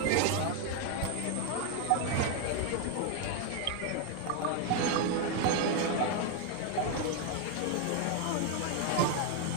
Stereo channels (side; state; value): both; different; correlation 0.01